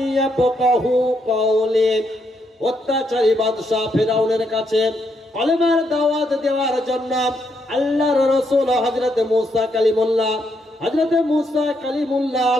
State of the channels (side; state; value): both; normal; correlation 0.77